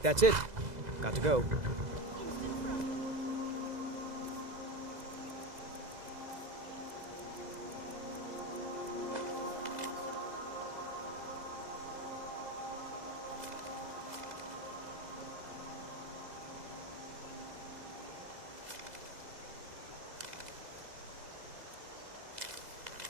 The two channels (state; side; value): late; left; 2.0 ms